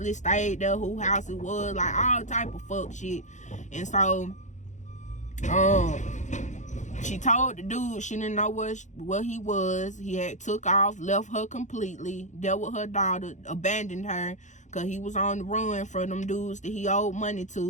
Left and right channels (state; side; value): late; right; 0.35 ms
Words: stayed there, who house it was. Like, all type of fuck shit. And so she told the dude she didn't know where he was. He had took off, left her completely, dealt with her daughter, abandoned her, because he was on the run for them dudes that he owed money